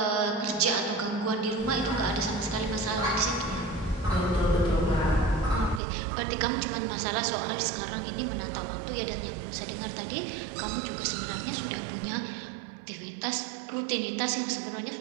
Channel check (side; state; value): left; drops out; at 5.8 s